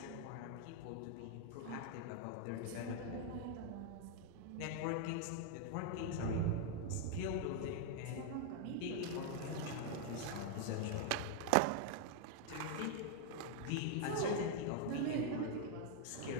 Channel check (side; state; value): both; different; correlation 0.00